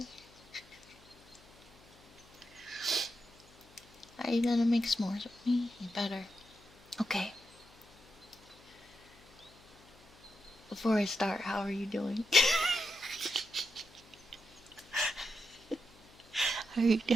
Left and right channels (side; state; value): left; noise; hum, 26 dB below the sound